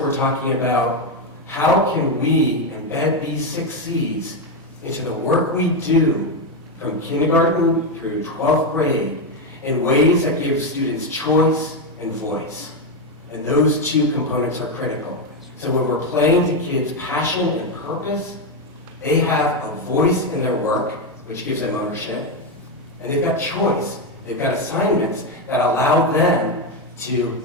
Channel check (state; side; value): normal; both; correlation 0.07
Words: talking about how can we embed these 6 C's into the work we do from kindergarten through 12th grade in ways that give students choice and voice. And those 2 components are critical. So when we're playing to kids' passion and purpose, they have a voice in their work, which gives them ownership, and they've got choice. They've got assignments that allow them to